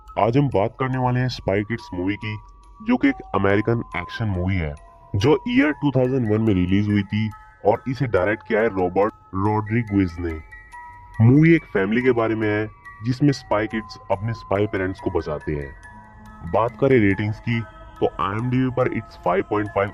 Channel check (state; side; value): identical; both; correlation 1.00